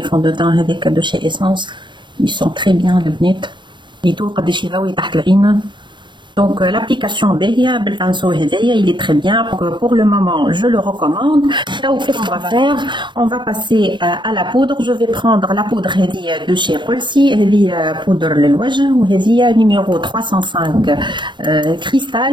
فون دو تان هذاك دو شي اسونس ils sont très bien البنات. يدو قداش يضوي تحت العين. Donc l'application باهية بالبانسو هذايا il est très bien. Pour le moment je le recommande. Qu'est-ce qu'on va faire? On va passer à la poudre. Je vais prendre la poudre هذه de chez Rolsi. هذه poudre للوجه وهذه numéro 305 cristal.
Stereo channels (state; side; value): late; left; 0.23 ms